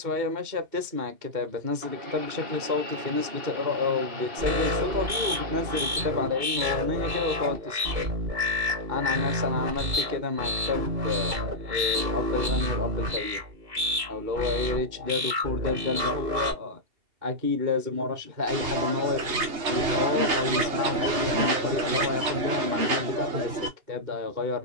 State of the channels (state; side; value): late; left; 2.7 ms